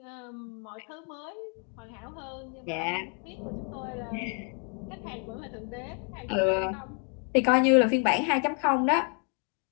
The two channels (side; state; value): right; quieter; 39.8 dB